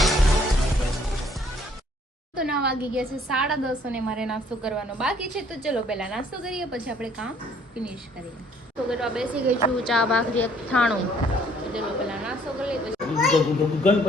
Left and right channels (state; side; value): normal; both; correlation 0.62